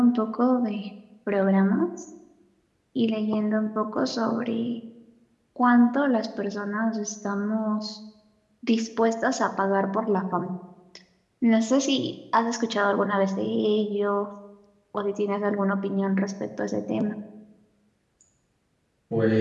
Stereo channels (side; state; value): both; identical; correlation 1.00